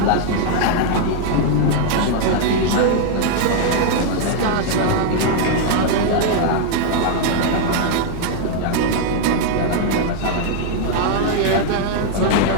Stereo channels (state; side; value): different; both; correlation 0.00